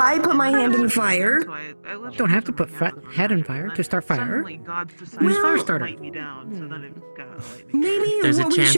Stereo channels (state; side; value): inverted; both; correlation -1.00